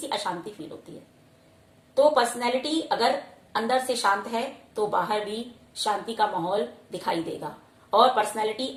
अशांति फील होती है। तो पर्सनैलिटी अगर अंदर से शांत है तो बाहर भी शांति का माहौल दिखाई देगा, और पर्सनैलिटी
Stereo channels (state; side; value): identical; both; correlation 1.00